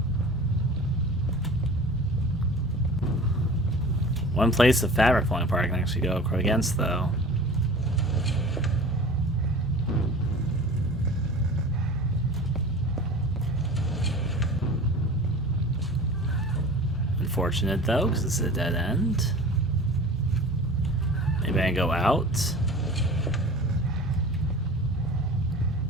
One place the fabric falling apart I can actually go against, though. Unfortunate, though, because this is a dead end. Maybe I can go out.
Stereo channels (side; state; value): both; normal; correlation 0.39